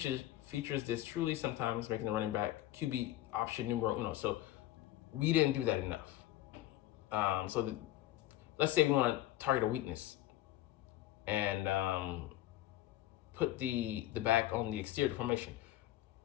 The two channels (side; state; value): right; quieter; 14.7 dB